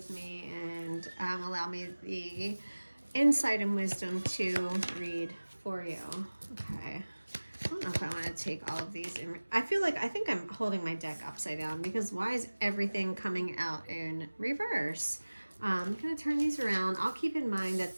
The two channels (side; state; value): both; inverted; correlation -1.00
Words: me and allow me the insight and wisdom to read for you. Okay. I don't know if I want to take all of these in. I think I'm holding my deck upside down because why is everything coming out in reverse? I'm going to turn these around. I'll keep in mind that